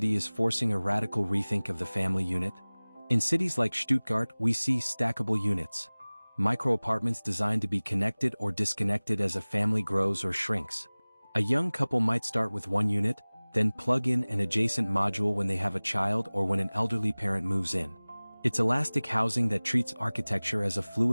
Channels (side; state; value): both; inverted; correlation -1.00